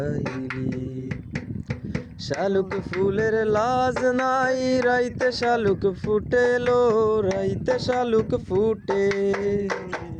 শালুক ফুলের লাজ নাই, রাইতে শালুক ফুটেলো, রাইতে শালুক ফুটে।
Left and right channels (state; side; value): identical; both; correlation 1.00